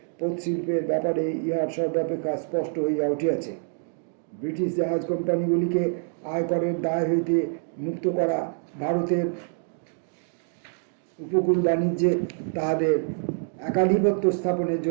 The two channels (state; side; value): silent; left; 58 dB below the other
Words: পোত শিল্পের ব্যাপারে ইহার সর্বাপেক্ষা স্পষ্ট হইয়া উঠিয়াছে। ব্রিটিশ জাহাজ কোম্পানিগুলিকে আয়করের দায় হইতে মুক্ত করা, ভারতের উপকূল বাণিজ্যে তাহাদের একাধিপত্য স্থাপনের